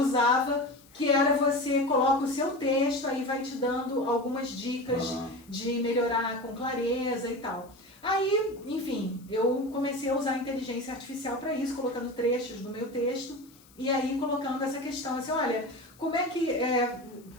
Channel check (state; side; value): noise; left; hiss, 27 dB below the sound